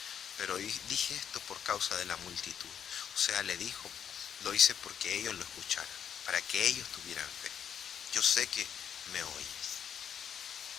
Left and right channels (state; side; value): quieter; right; 8.4 dB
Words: pero dije esto por causa de la multitud. O sea, le dijo, lo hice porque ellos lo escucharan, para que ellos tuvieran fe. Yo sé que me oyes.